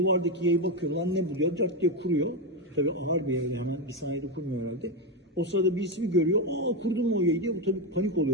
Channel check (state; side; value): normal; both; correlation 0.10